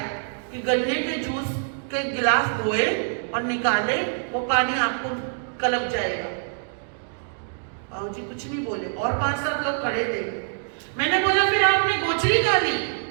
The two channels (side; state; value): left; silent; digital silence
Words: कि गन्ने के जूस के गिलास धोए और निकाले, वो पानी आपको कलप जाएगा। बाबूजी कुछ नहीं बोले और 5-7 लोग खड़े थे। मैंने बोला फिर आपने गोचरी का ली?